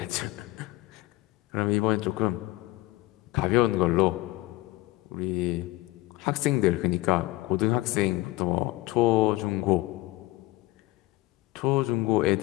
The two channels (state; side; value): quieter; right; 18.8 dB